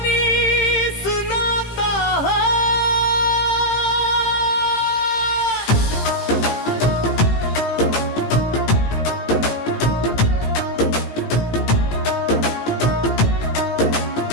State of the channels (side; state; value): right; late; 18 ms